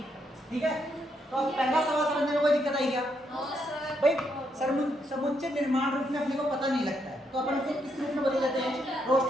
ठीक है, तो अब पहला सवाल समझने में कोई दिक्कत आई क्या भाई? समुच्चय निर्माण रूप में अपने को पता नहीं लगता है, तो अपन उसे किस रूप में बदल देते हैं?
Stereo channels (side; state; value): both; normal; correlation 0.77